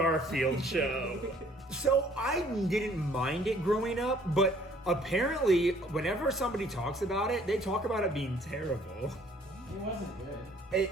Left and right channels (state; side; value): normal; both; correlation 0.59